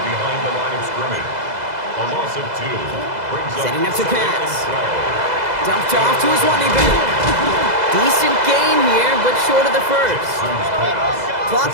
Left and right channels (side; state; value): left; late; 2.0 ms